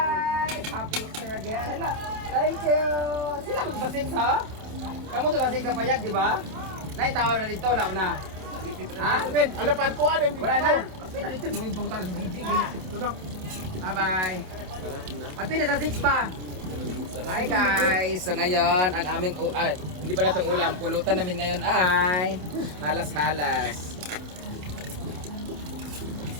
Happy Easter again. Hello. Thank you. Sila magbasig sa? Kamu to basig sa payag, di ba? Naitawa na dito na na. Ha? Ala pantuan yung Wala na. Wait, dito mo yung bangkal sa gigi. Bye-bye. Pati na sa 6 pa. Hi guys! So ngayon, ang aming hindi pala itong ulam, pulutan namin ngayon ay halas-halas.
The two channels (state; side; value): late; left; 28 ms